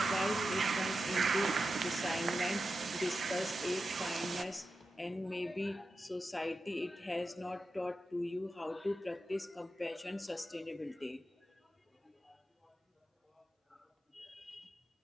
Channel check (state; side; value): normal; both; correlation 0.90